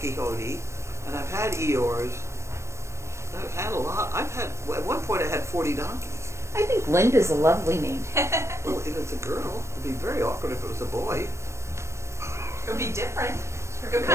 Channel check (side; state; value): left; late; 0.13 ms